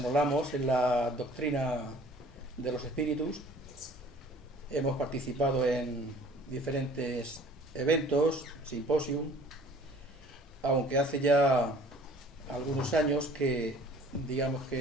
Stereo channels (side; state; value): both; normal; correlation 0.51